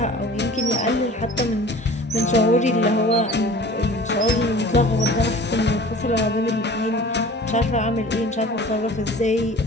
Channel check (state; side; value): normal; both; correlation 0.43